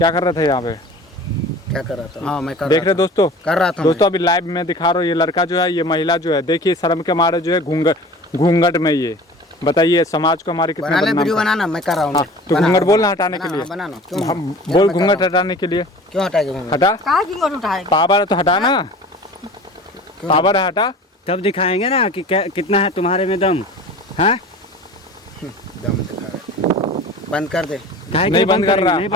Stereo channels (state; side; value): normal; both; correlation 0.41